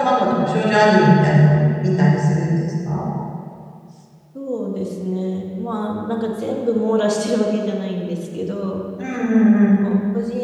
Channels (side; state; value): both; identical; correlation 1.00